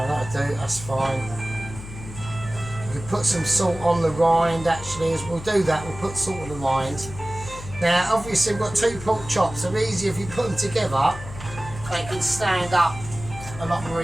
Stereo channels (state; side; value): noise; left; hum, 12 dB below the sound